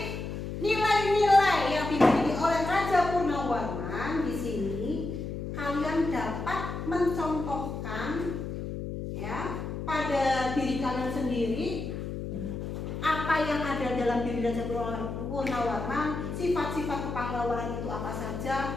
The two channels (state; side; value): noise; left; hum, 6 dB below the sound